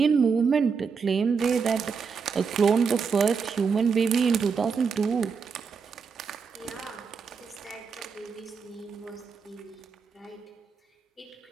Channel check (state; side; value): quieter; left; 5.6 dB